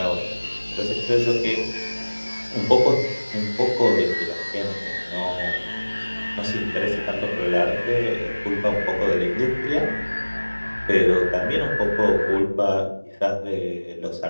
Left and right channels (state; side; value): inverted; both; correlation -1.00